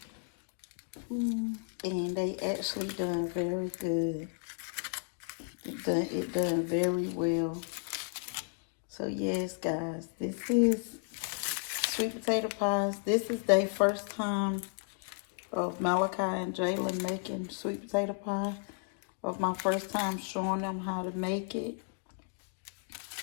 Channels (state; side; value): silent; right; 56 dB below the other